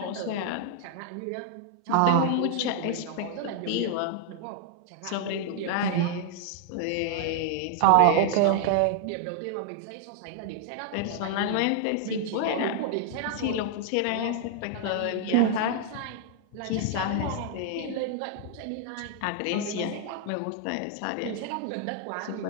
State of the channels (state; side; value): different; both; correlation 0.00